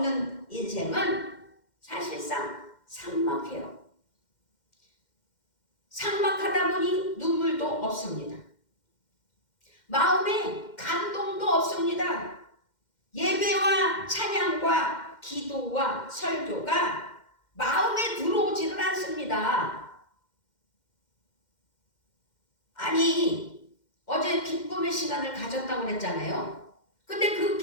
인생은 사실상 삭막해요. 삭막하다 보니 눈물도 없습니다. 마음에 감동도 없습니다. 예배와 찬양과 기도와 설교가 마음에 들어오지를 않습니다. 아니, 어제 기쁨의 시간을 가졌다고 그랬잖아요. 근데 그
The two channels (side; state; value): right; late; 2.1 ms